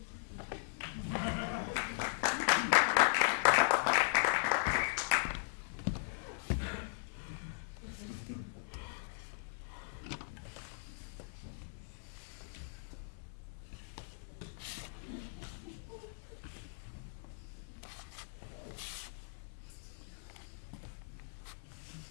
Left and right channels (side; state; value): right; silent; 52 dB below the other